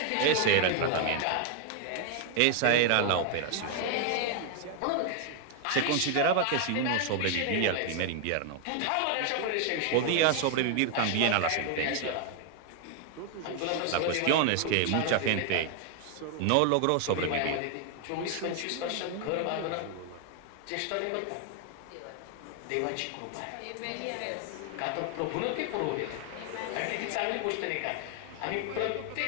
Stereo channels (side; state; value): both; different; correlation 0.00